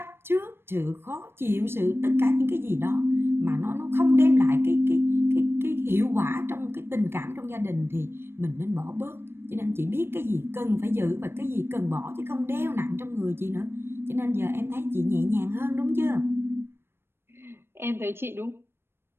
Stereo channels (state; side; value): late; left; 0.11 ms